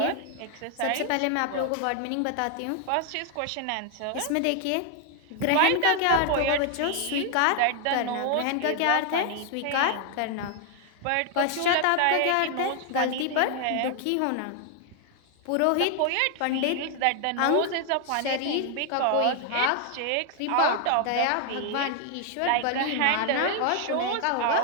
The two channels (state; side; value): different; both; correlation 0.00